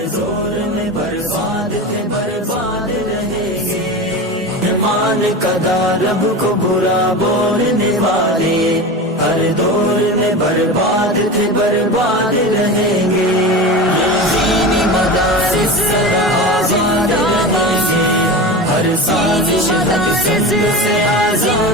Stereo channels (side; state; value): both; normal; correlation 0.27